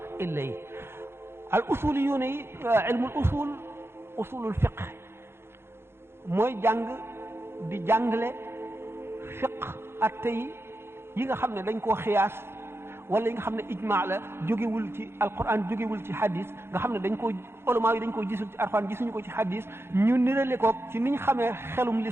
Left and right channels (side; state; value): left; late; 0.12 ms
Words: illa yi al usul yu ne yi ilmul usulul fiq mooy jàng di jàngale fiq atte yi nga xam ne dañ koo xiyaas wala yi nga xam ne ijmaa la jógewul ci alquran jógewul ci hadis nga xam ne dañ koo ulama yi dañ koo gisul ci alquran gisuñu ko ci hadis ñu nirale ko ci niñ xamee xelum